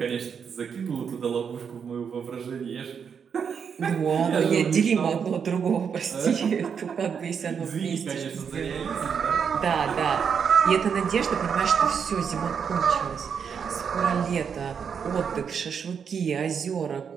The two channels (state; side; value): quieter; left; 6.9 dB